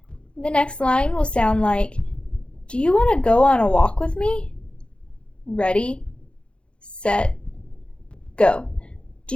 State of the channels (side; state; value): right; late; 0.057 ms